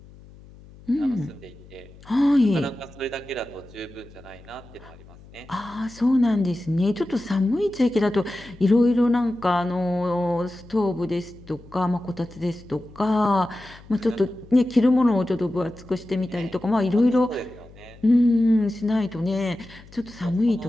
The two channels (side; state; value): left; noise; hum, 22 dB below the sound